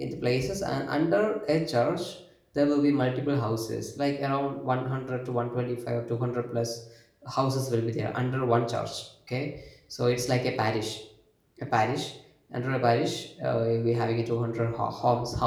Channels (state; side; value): identical; both; correlation 1.00